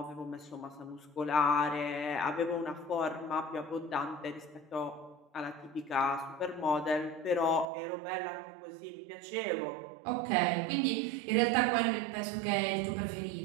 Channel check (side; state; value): left; drops out; at 7.7 s